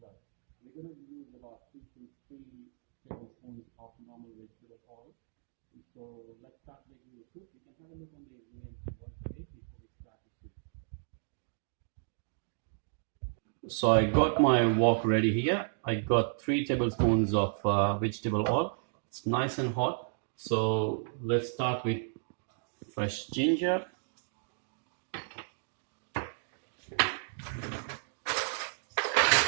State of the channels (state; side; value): silent; left; digital silence